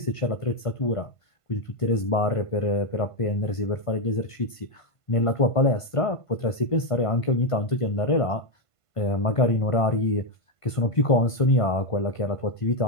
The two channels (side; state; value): right; late; 1.5 ms